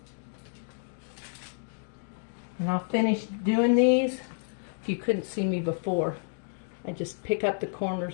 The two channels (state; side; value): silent; right; digital silence